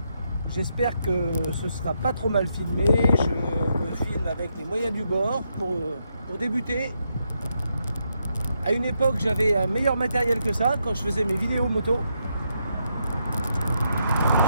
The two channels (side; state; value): both; inverted; correlation -0.80